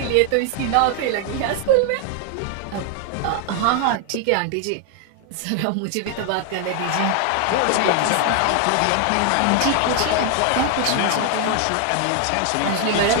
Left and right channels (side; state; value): both; different; correlation 0.00